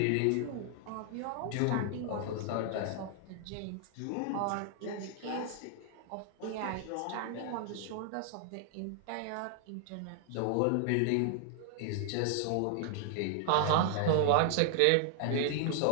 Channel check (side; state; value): both; different; correlation 0.00